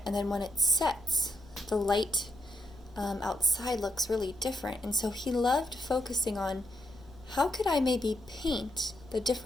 and then when it sets, the light outside looks really different. And so he loved focusing on how could I maybe paint the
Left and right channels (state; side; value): noise; left; rumble, 22 dB below the sound